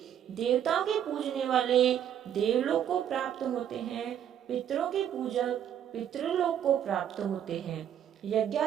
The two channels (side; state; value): left; quieter; 9.8 dB